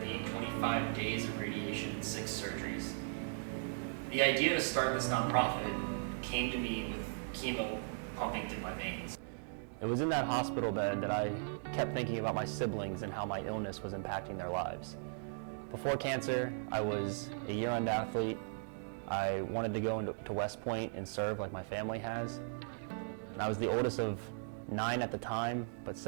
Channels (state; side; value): silent; left; digital silence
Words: 25 days of radiation, and 6 surgeries. The idea to start this nonprofit came to me with chemo pumping through my veins. It was in that hospital bed that I kept thinking about my siblings and how my illness was impacting their lives. Before cancer, I was a year-round athlete. I wanted to go to West Point and serve like my family has. And I was the oldest of 9 at the time, but